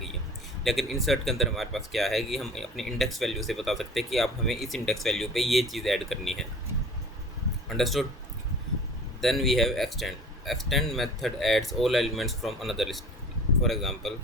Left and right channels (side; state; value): both; normal; correlation 0.43